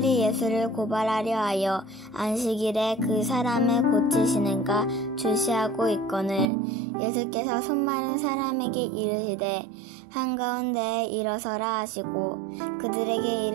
예수를 고발하려 하여 안식일에 그 사람을 고치시는가 주시하고 있거늘 예수께서 손 마른 사람에게 이르시되 한가운데에 일어서라 하시고 그들에게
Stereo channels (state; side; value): drops out; left; at 6.5 s